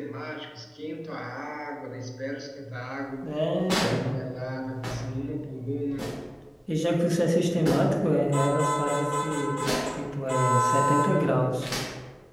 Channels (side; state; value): both; identical; correlation 1.00